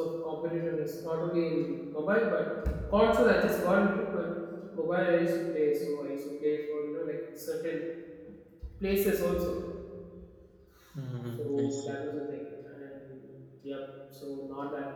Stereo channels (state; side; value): identical; both; correlation 1.00